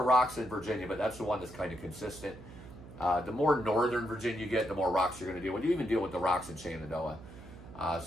rocks in Virginia, but that's the one that's kind of consistent. The more northern Virginia you get, the more rocks you're going to deal with. You even deal with the rocks in Shenandoah.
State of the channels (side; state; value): right; noise; hum, 16 dB below the sound